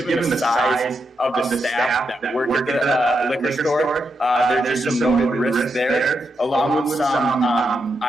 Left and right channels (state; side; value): normal; both; correlation 0.84